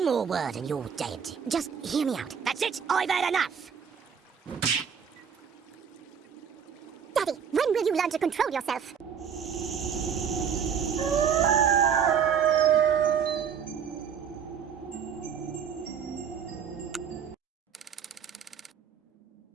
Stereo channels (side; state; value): left; quieter; 7.4 dB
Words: more word and you're dead. Just hear me out. That's it, I've had enough! you learn to control yourself?